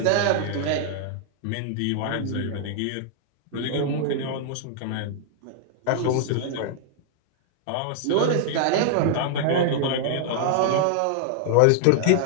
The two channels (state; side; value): different; both; correlation -0.01